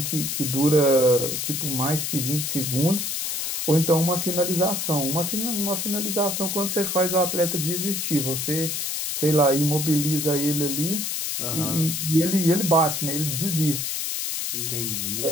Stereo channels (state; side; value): noise; left; hiss, 2 dB below the sound